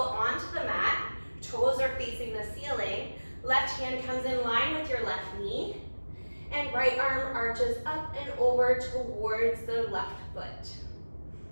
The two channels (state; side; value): inverted; both; correlation -1.00